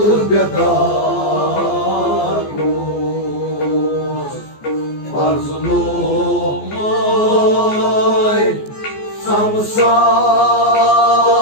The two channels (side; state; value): right; late; 14 ms